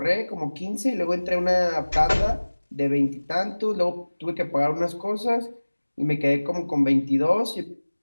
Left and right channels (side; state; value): both; inverted; correlation -1.00